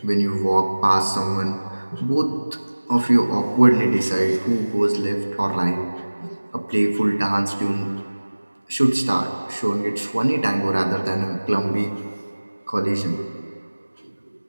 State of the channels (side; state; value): both; inverted; correlation -1.00